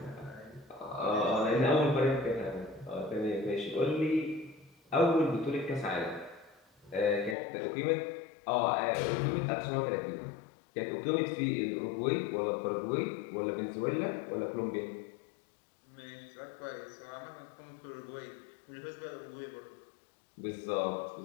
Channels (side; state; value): right; drops out; at 7.4 s